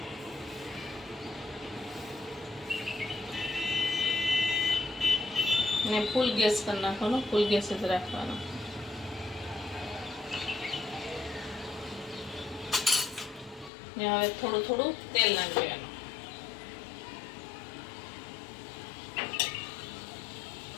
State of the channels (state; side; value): drops out; right; at 13.7 s